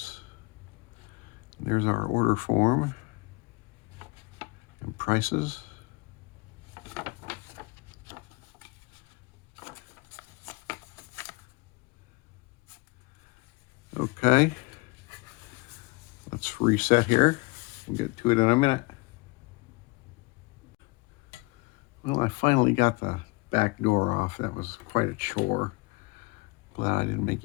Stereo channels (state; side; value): quieter; right; 26.1 dB